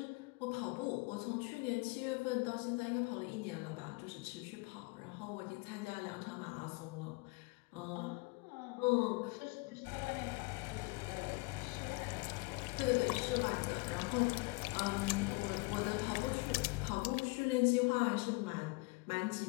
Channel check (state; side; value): quieter; right; 27.4 dB